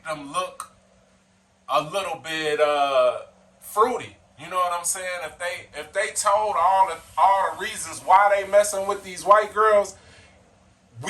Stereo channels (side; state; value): both; identical; correlation 1.00